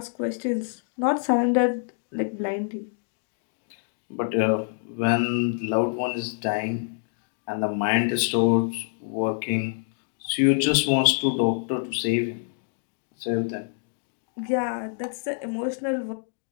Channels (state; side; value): silent; right; digital silence